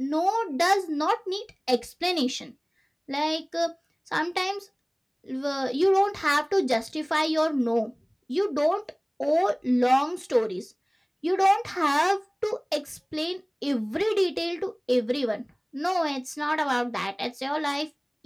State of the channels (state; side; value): identical; both; correlation 1.00